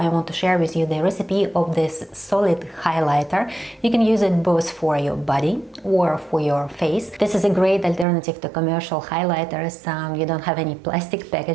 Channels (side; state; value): left; drops out; at 8.1 s